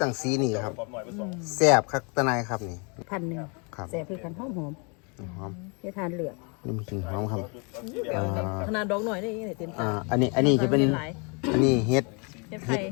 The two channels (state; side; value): quieter; right; 34.1 dB